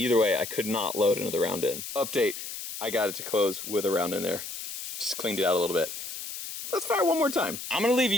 way, I could not load another round in. Update, I got it to close with a round in there. Just cleaned it out a little bit. Let's fire one more time. I'm gonna leave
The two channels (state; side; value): noise; left; hiss, 8 dB below the sound